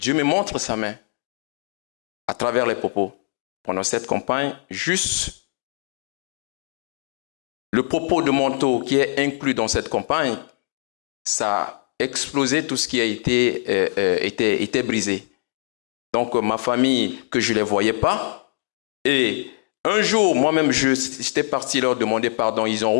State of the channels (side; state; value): right; silent; digital silence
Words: me montre sa main à travers les propos. Pendant cette campagne, juste le propos de manteau qui est inclus dans cette campagne, ça a explosé tout ce qui a été brisé. Donc ma famille, que je ne les voyais pas, et un jour, moi-même, j'étais parti leur demander pardon, ils ont